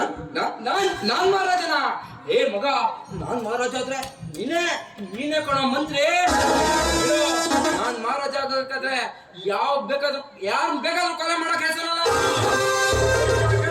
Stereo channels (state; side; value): identical; both; correlation 1.00